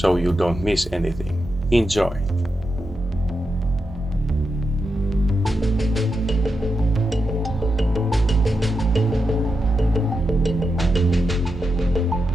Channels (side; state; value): both; normal; correlation 0.86